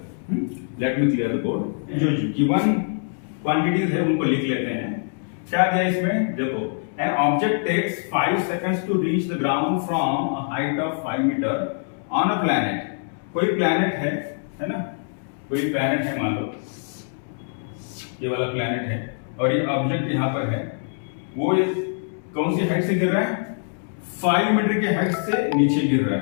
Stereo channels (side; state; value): right; silent; 63 dB below the other